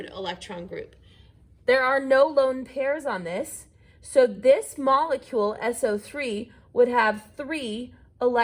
electron group. There are no lone pairs on this, so this molecule, SO3, would have 3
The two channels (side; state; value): both; identical; correlation 1.00